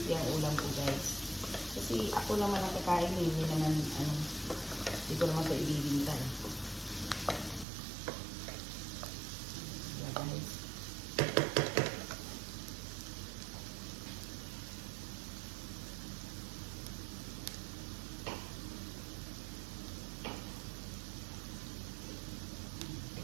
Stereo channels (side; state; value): left; drops out; at 7.7 s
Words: ang ulam ko guys. Kasi ako naman ang kakain, hindi naman hindi ko naman ito ibibinta. Yeah guys.